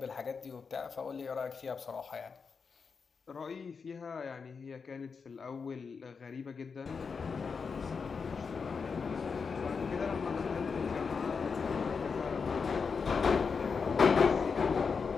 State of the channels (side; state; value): right; quieter; 5.4 dB